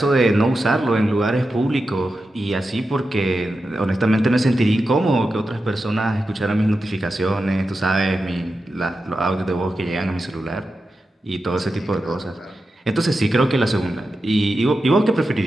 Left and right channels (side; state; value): both; normal; correlation 0.90